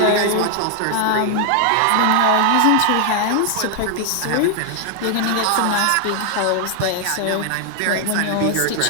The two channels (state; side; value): different; both; correlation 0.00